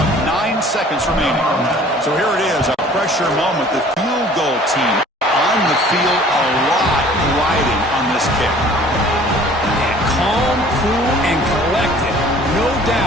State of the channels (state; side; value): normal; both; correlation 0.51